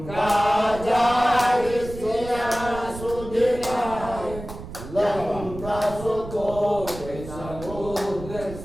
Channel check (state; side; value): noise; right; rumble, 12 dB below the sound